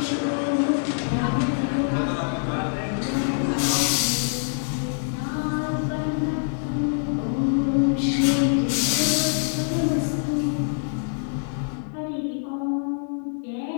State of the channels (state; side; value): silent; right; digital silence